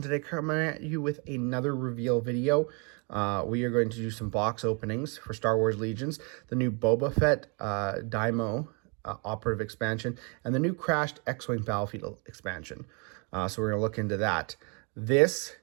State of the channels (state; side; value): quieter; left; 34.5 dB